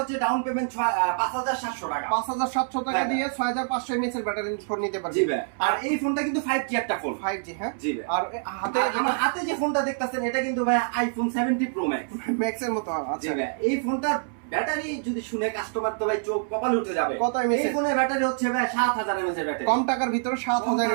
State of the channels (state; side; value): silent; left; 61 dB below the other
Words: হচ্ছে ডাউন পেমেন্ট 5700 টাকা। 5700 টাকা দিয়ে 6500 mAh এর ব্যাটারি ফোন নিতে পারবে। জি ভাই। আর এই ফোনটা কিন্তু 5G একটা ফোন। 5G, হ্যাঁ। জি ভাই। আর হাতে আমার হাতে যে ফোনটা দেখতেছেন এটা কিন্তু ভাই আইফোন 70 প্রো ম্যাক্স। ম্যাক্স এর মতো। জি আচ্ছা ভাই। এই ফোনটার ব্যাটারি যদি শুনে কাস্টমার তো ভাই চোখ কপাল উঠে যাবে। কত mAh? এই ফোনের ব্যাটারি হচ্ছে ভাই 7000 mAh এর ব্যাটারি। কম টাকার ভিতরে 7000